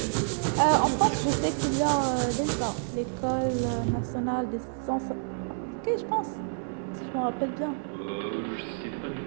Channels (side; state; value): left; silent; digital silence